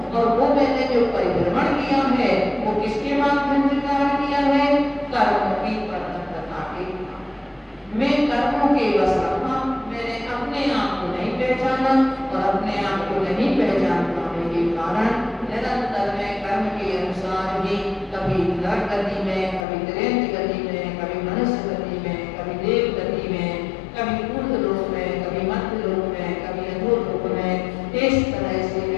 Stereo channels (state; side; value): drops out; right; at 19.7 s